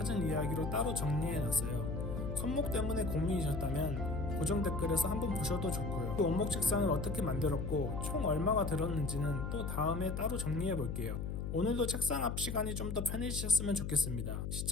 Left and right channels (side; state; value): left; noise; hum, 3 dB below the sound